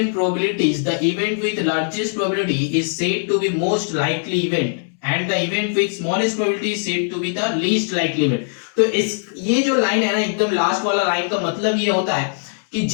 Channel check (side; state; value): right; silent; 65 dB below the other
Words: probabilities the event with largest probability is said to be most likely event and the event with smallest probability is said to be the least likely event। तो इस ये जो line है ना, एकदम last वाला line का मतलब ये होता है कि